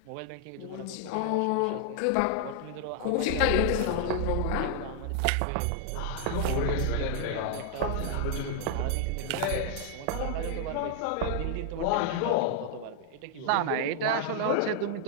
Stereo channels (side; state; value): both; different; correlation 0.00